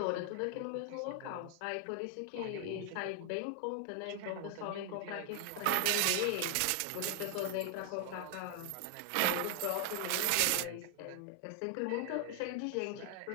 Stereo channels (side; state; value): both; different; correlation 0.00